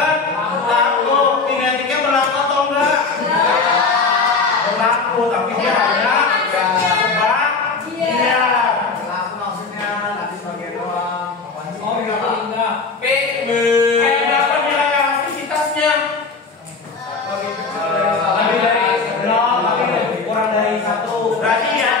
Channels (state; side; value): quieter; right; 4.4 dB